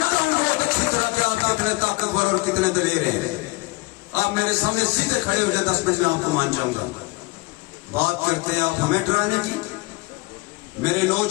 ہوں بہت اچھی طرح کہ آپ کتنے طاقتور اور کتنے دلیر ہیں. آپ میرے سامنے سیدھے کھڑے ہو جائے 10 منٹ میں آپ کو مان جاؤں گا. بات کرتے ہیں آپ ہمیں ڈرانے کی. میرے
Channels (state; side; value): quieter; right; 24.0 dB